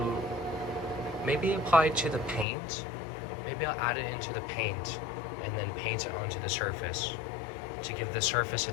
the paint. Maybe I'll add it into the paint and then paint it onto the surface to give the surface a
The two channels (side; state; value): right; drops out; at 2.5 s